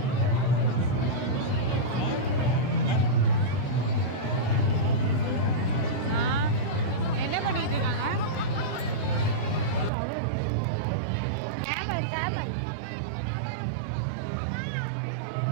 என்ன பண்ணிட்டு இருக்காங்க? கேமல்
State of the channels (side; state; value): left; drops out; at 9.9 s